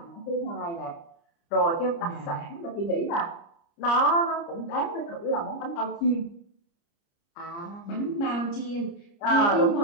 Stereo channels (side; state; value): right; late; 29 ms